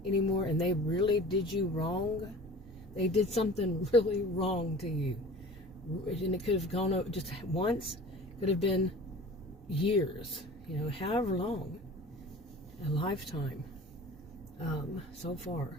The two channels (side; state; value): both; normal; correlation 0.41